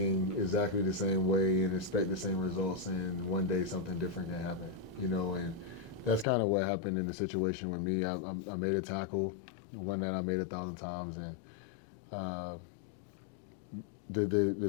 exactly the same way and expect the same results, and one day something different can happen, and that's kind of what happened in the situation with me. I made a tackle, one that I made 1,000 times, and the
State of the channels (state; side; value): drops out; right; at 6.2 s